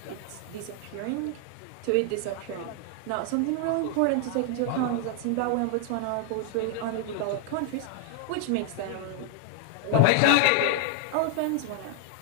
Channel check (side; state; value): both; different; correlation 0.00